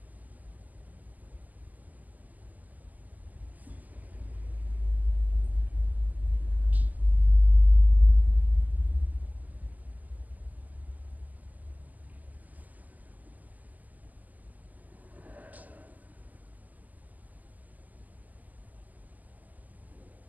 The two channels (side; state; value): left; late; 0.081 ms